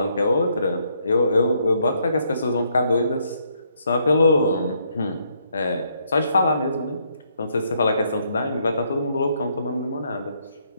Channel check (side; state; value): both; inverted; correlation -0.73